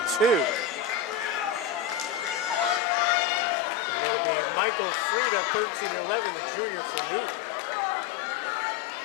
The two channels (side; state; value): right; drops out; at 2.8 s